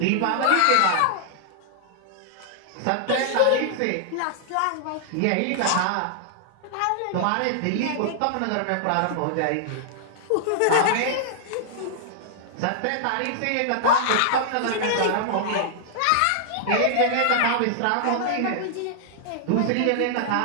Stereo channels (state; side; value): different; both; correlation -0.01